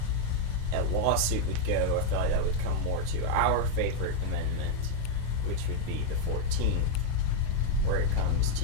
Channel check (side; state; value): both; different; correlation 0.00